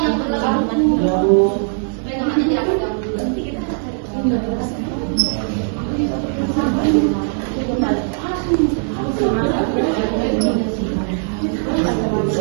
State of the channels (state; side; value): silent; left; 63 dB below the other